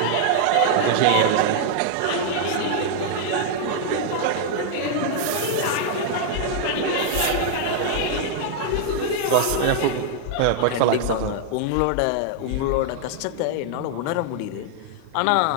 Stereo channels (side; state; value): both; different; correlation -0.01